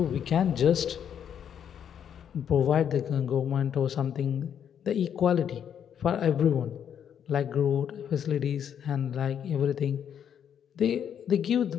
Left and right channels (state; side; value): quieter; right; 8.7 dB